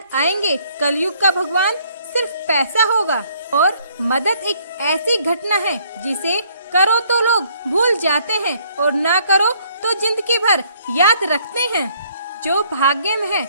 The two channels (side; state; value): both; inverted; correlation -0.64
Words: आएंगे। कलयुग का भगवान सिर्फ पैसा होगा, और मदद एक ऐसी घटना है जिसे करो तो लोग भूल जाते हैं, और ना करो तो जिंदगी भर याद रखते हैं। जो भाग्य में है